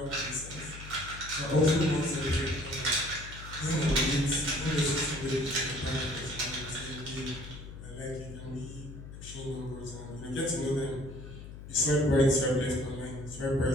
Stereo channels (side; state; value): left; noise; hum, 13 dB below the sound